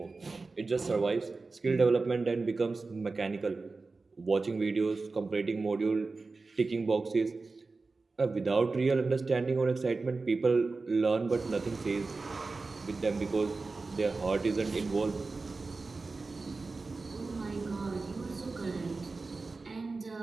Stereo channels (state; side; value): quieter; left; 3.9 dB